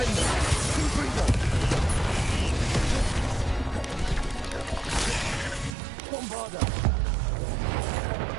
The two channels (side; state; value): left; drops out; at 5.8 s